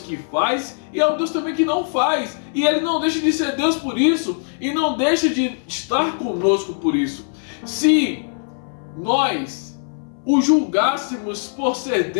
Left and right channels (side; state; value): right; silent; 63 dB below the other